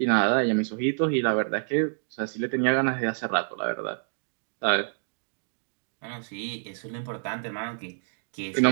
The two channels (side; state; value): left; silent; digital silence